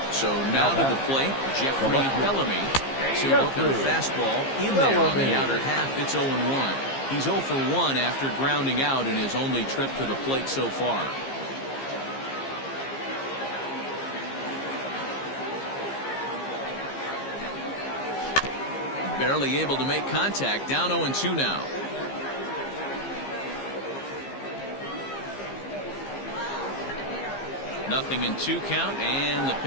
So now to the plate, Jeffrey Bellamy. He'll look at a fastball in there on the outer half. It's 0-1. He's 0 for 1 after grounding out in his only trip to the plate so far. Barely able to make contact. Down 0-2 now. 0-2 count, and the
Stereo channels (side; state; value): right; late; 15 ms